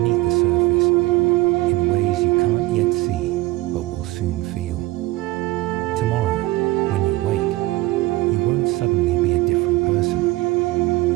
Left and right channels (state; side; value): quieter; left; 19.4 dB